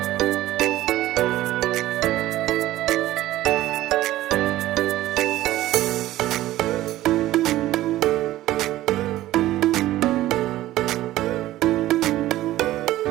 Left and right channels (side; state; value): left; quieter; 15.3 dB